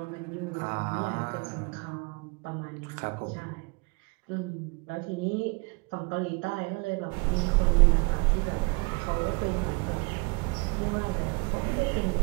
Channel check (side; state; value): left; quieter; 30.4 dB